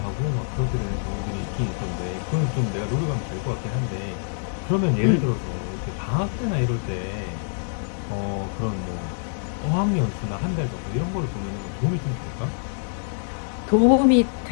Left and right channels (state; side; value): silent; right; 62 dB below the other